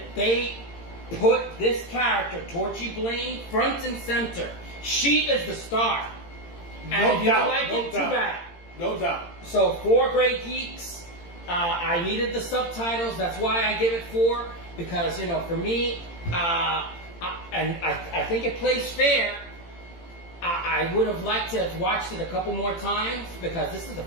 they put this character, Torchy Blaine, front and center. She is the star. And if you don't like it, too bad. No doubt. So 4 great geeks. I needed the subtitles. That's why I give it 4. Because, for me, I think it plays fair. I would have liked to have watched it a couple more times because this is the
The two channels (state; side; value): late; right; 18 ms